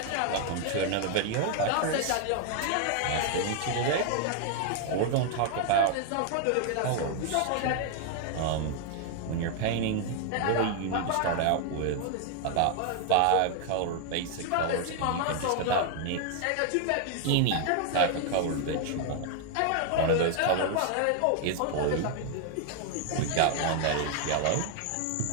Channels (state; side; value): different; both; correlation 0.00